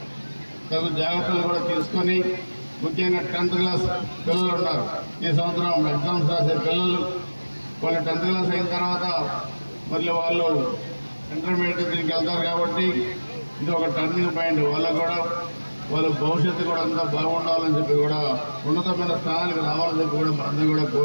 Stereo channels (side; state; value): both; inverted; correlation -1.00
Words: తగు జాగ్రత్తలు కూడా తీసుకొని, ముఖ్యంగా 10th క్లాస్ పిల్లలు ఉన్నారు. ఈ సంవత్సరం ఎగ్జామ్స్ రాసే పిల్లలు వాళ్ళు 10th క్లాస్ అయిన తర్వాత మళ్ళీ వాళ్ళు ఇంటర్మీడియట్ దీనికి వెళ్తారు. కాబట్టి ఇది ఒక టర్నింగ్ పాయింట్. వాళ్ళకు కూడా వాళ్ళ భవిష్యత్తు కూడా అంతా బాగుండాలని చెప్పి కూడా ఉన్నతమైన స్థానానికి రావాలని చెప్పి కూడా మనందరం కూడా